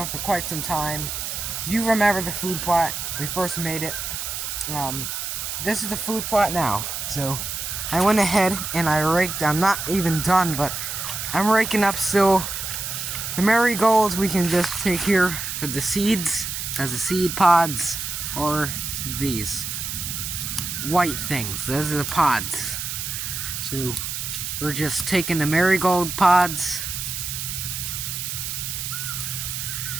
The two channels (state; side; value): noise; right; hiss, 4 dB below the sound